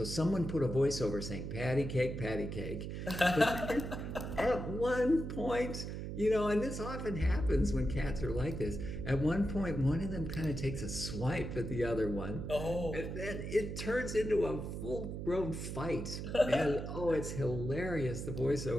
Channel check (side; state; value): right; noise; hum, 5 dB below the sound